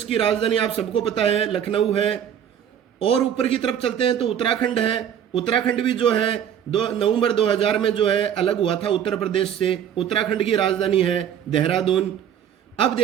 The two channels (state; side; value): quieter; left; 9.3 dB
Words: की राजधानी आप सबको पता है लखनऊ है। और ऊपर की तरफ चलते हैं तो उत्तराखंड है। उत्तराखंड भी जो है 2 नवंबर 2000 में जो है अलग हुआ था उत्तर प्रदेश से। उत्तराखंड की राजधानी है देहरादून। अब